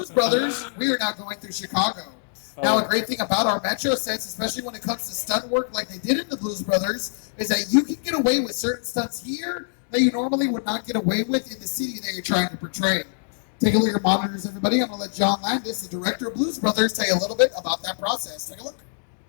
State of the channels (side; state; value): right; silent; digital silence